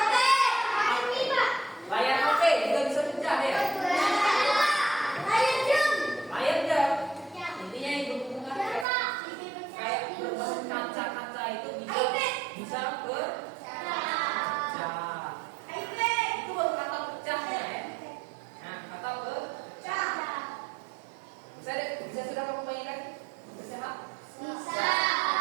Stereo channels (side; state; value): left; drops out; at 8.8 s